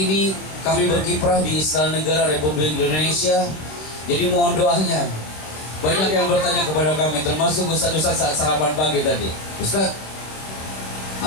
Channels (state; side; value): late; right; 26 ms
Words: kami berkiprah di Istana Negara Republik Indonesia. Jadi mohon doanya. Banyak yang bertanya kepada kami, termasuk Ustaz-Ustaz saat sarapan pagi tadi. Ustaz,